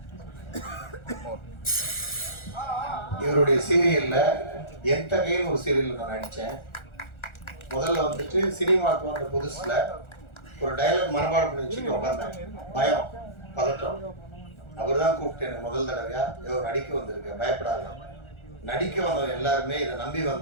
இவருடைய சீரியல்ல என் தகையில் ஒரு சீரியல்ல நான் நடித்தேன். முதல்ல சினிமாவுக்கு வந்த புதுசுல ஒரு டைலாக் மனப்பாடம் பண்ணி வச்சுட்டு உட்காந்தேன். பயம், பதட்டம். அவர் தான் கூப்பிட்டு எனக்கு முதல் தடவையா நடிக்க வந்திருக்கேன், பயப்படாத. நடிக்க வந்தவன் எல்லாருமே இதை நம்பி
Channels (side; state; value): right; late; 1.4 ms